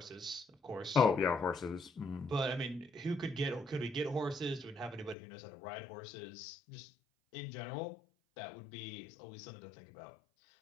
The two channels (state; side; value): drops out; right; at 5.2 s